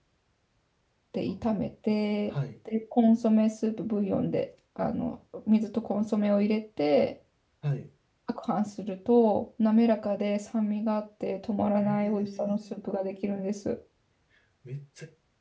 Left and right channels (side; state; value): both; identical; correlation 1.00